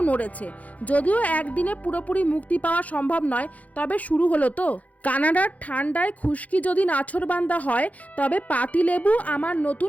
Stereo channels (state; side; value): late; right; 0.071 ms